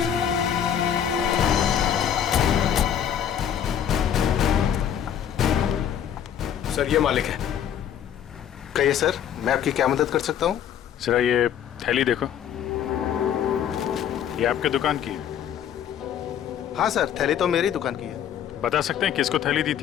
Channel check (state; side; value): quieter; right; 9.3 dB